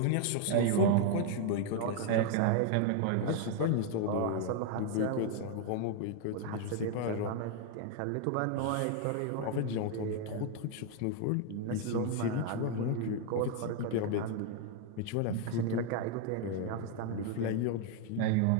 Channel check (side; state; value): both; different; correlation 0.00